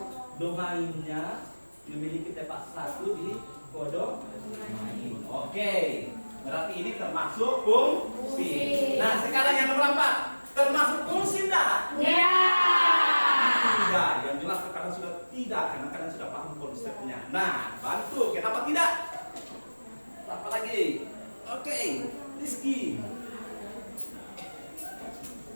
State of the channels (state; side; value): inverted; both; correlation -1.00